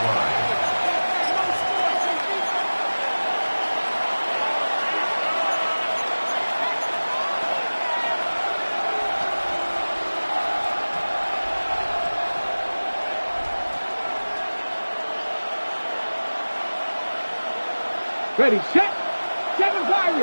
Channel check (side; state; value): both; inverted; correlation -1.00